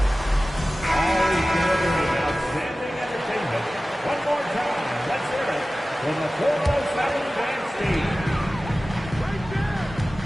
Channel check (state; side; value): normal; both; correlation 0.96